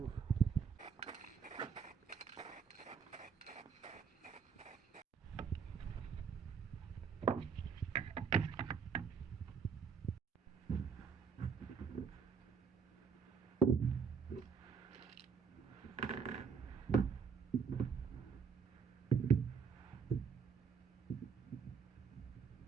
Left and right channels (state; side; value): quieter; left; 6.2 dB